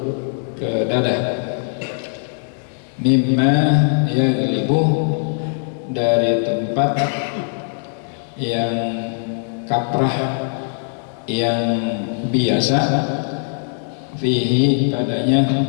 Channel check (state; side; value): silent; right; digital silence